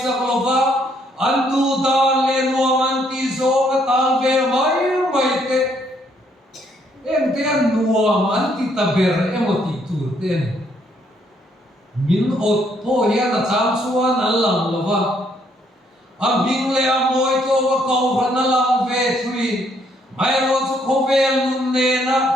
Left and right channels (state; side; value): normal; both; correlation 0.70